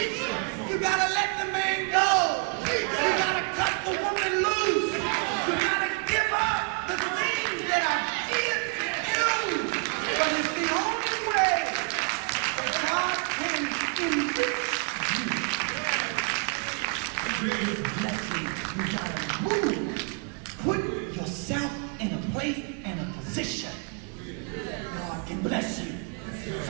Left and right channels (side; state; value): left; quieter; 35.3 dB